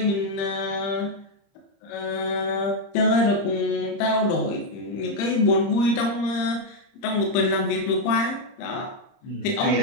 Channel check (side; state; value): right; late; 30 ms